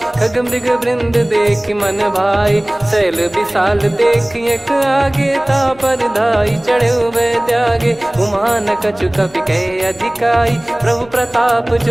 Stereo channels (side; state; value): left; noise; hum, 25 dB below the sound